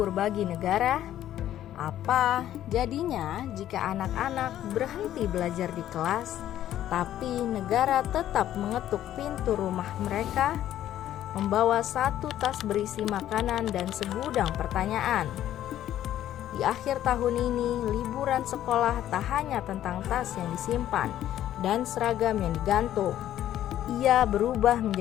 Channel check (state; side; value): quieter; right; 12.1 dB